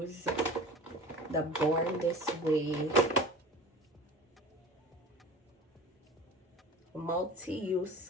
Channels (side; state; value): both; normal; correlation 0.37